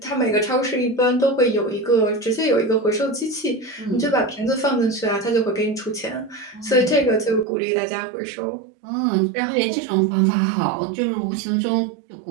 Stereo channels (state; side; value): drops out; left; at 7.5 s